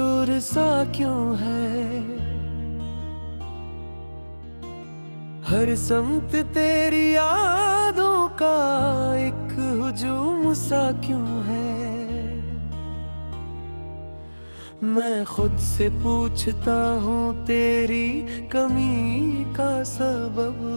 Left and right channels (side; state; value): both; inverted; correlation -1.00